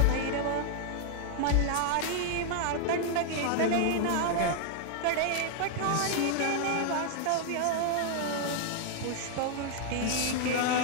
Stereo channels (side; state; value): both; different; correlation 0.00